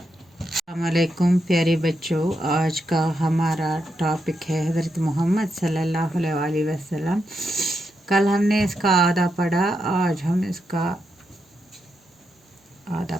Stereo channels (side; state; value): both; normal; correlation 0.84